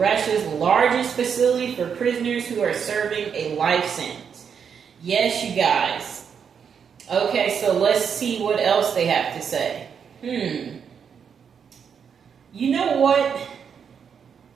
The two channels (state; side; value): quieter; left; 7.1 dB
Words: largest facility for prisoners who are serving a life sentence. Yes, you guys. Okay, so let's see what else they have to say. You know what?